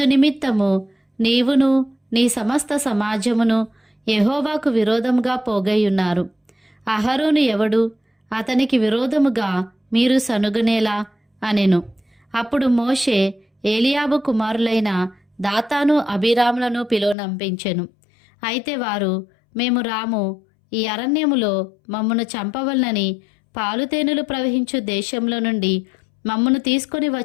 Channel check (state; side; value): drops out; right; at 17.2 s